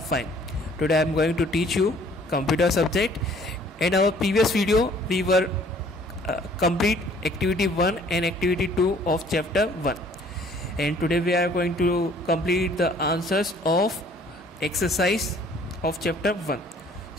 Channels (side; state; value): both; normal; correlation 0.56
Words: fine. Today I am going to teach you computer subject. In our previous video, we were complete activity 1 and activity 2 of chapter 1. And today we are going to complete the answers of exercise of chapter 1.